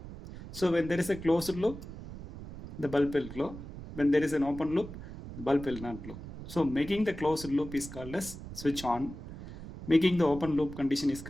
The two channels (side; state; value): right; noise; rumble, 12 dB below the sound